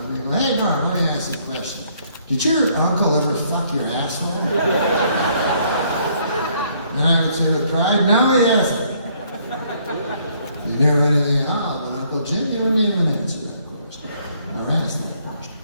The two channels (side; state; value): both; inverted; correlation -0.66